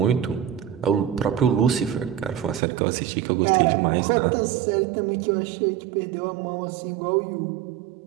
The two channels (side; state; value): left; drops out; at 2.6 s